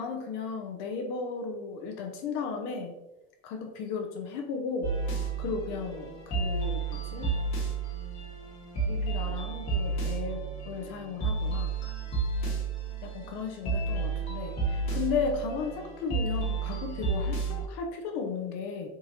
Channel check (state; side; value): normal; both; correlation 0.00